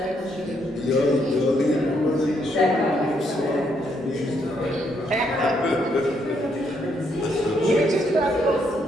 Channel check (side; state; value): both; normal; correlation 0.74